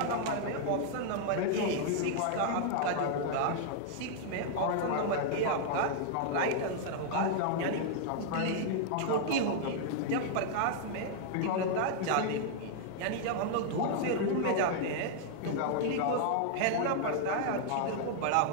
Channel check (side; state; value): both; different; correlation -0.01